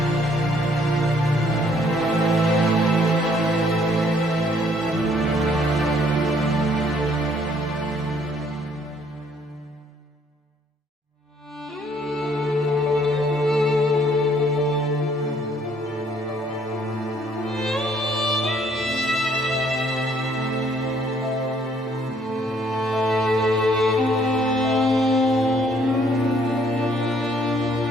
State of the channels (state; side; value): normal; both; correlation 0.64